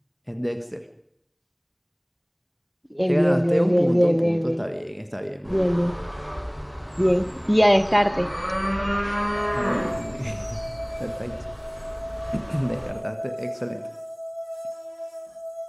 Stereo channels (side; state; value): both; identical; correlation 1.00